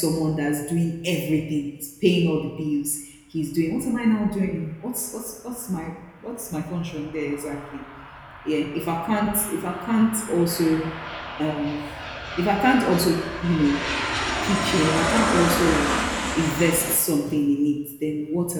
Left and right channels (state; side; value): identical; both; correlation 1.00